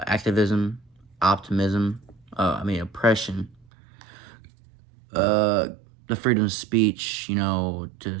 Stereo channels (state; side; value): drops out; left; at 3.7 s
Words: optimism, oppression, the freedom of speech, to